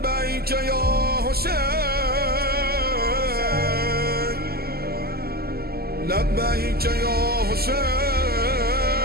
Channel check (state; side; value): late; left; 0.45 ms